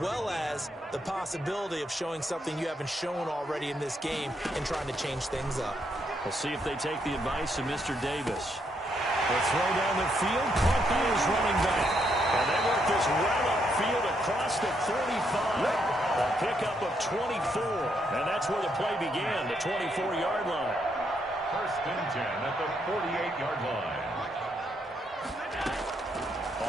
as the possibility of showing something you haven't shown already in this game and trying to change things up. We'll see if they take the advice of Mr. Davis. They'll throw down the field. Caught by his running back. And they work this well upfield across the 35. A pickup of 24. And that's where the play began, the 24-yard line. First and 10 at the 48-yard line.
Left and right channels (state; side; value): normal; both; correlation 0.76